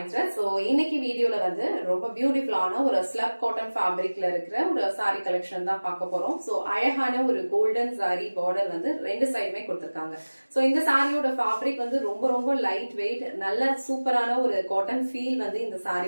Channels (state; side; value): inverted; both; correlation -1.00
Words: Thread. So இன்னைக்கு வீடியோல வந்து ரொம்ப பியூட்டிஃபுல்லான ஒரு ஸ்லப் காட்டன் ஃபேப்ரிக்ல இருக்கிற ஒரு saree கலெக்ஷன் தான் பார்க்க போறோம். சோ அழகான ஒரு கோல்டன் saree border வந்து ரெண்டு சைடுமே கொடுத்திருக்காங்க. சோ இந்த சாரியோட ஃபேப்ரிக் வந்து ரொம்ப லைட் வெயிட், நல்ல சூப்பரான ஒரு காட்டன் ஃபீல் வந்து இந்த